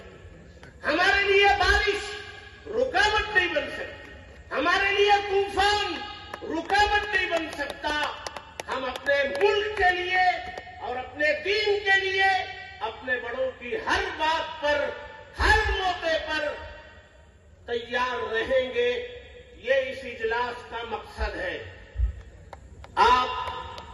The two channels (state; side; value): identical; both; correlation 1.00